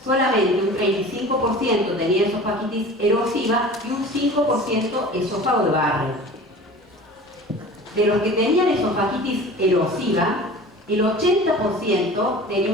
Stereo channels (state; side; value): normal; both; correlation 0.40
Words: Solamente un 35% tenía esofagitis erosiva y un 5% esófago de Barrett. De los que tenían esofagitis erosiva, el 80% tenía